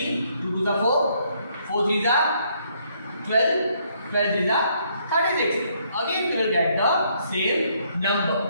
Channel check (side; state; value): both; inverted; correlation -0.69